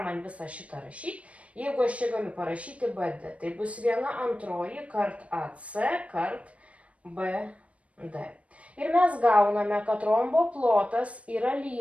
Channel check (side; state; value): left; late; 0.064 ms